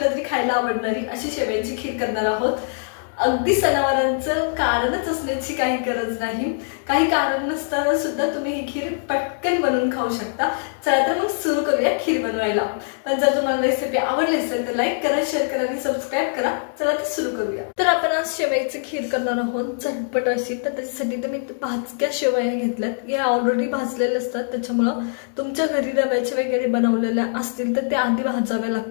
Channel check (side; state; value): right; silent; digital silence